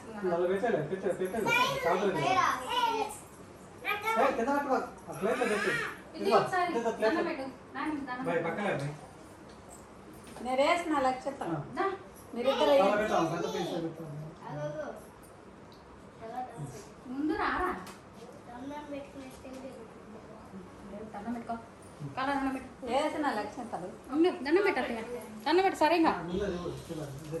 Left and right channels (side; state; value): both; identical; correlation 1.00